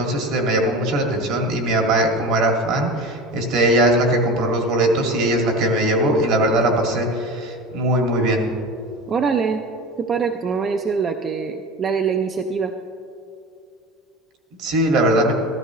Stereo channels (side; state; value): both; normal; correlation 0.31